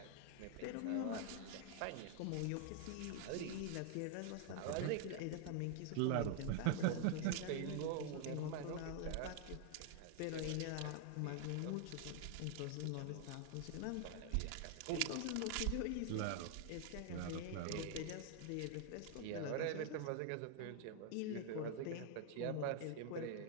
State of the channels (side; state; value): both; different; correlation 0.00